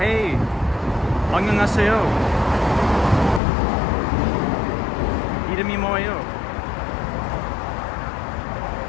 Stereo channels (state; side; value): drops out; right; at 3.4 s